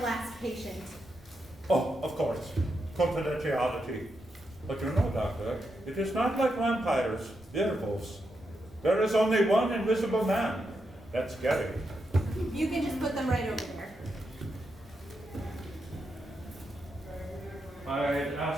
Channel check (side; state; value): both; normal; correlation 0.84